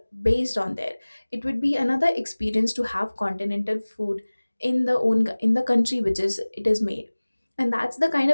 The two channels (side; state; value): both; inverted; correlation -1.00